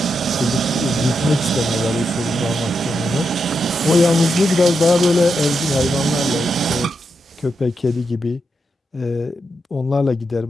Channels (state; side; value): normal; both; correlation 0.85